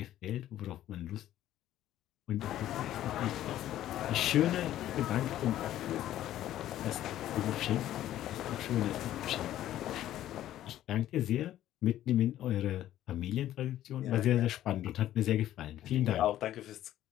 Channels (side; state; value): right; quieter; 12.9 dB